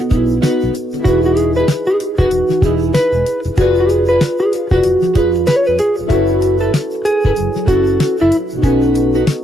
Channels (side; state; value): both; normal; correlation 0.79